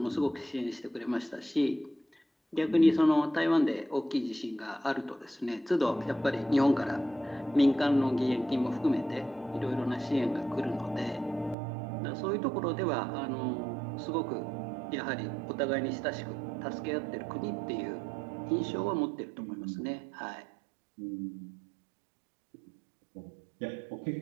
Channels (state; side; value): drops out; left; at 11.6 s